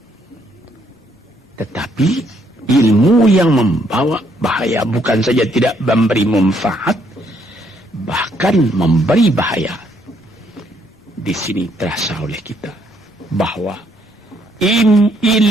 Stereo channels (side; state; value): both; normal; correlation 0.70